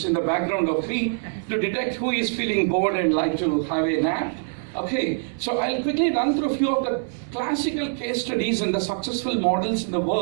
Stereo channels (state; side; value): silent; left; digital silence